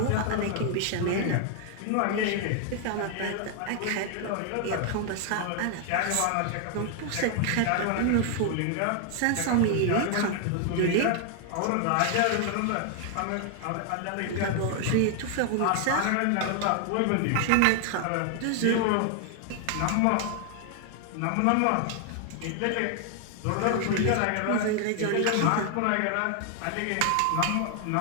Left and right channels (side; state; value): both; different; correlation 0.00